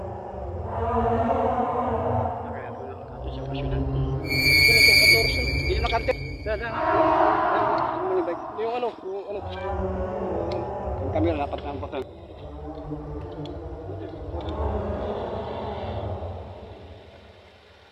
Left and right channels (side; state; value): both; identical; correlation 1.00